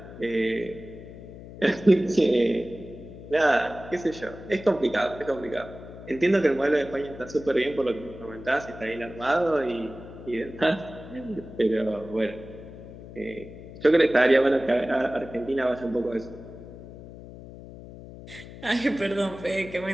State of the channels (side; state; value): left; noise; hum, 15 dB below the sound